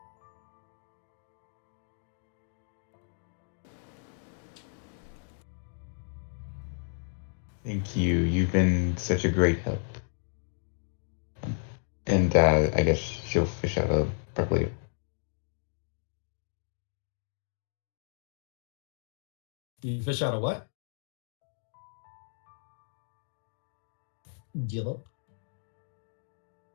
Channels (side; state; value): right; silent; digital silence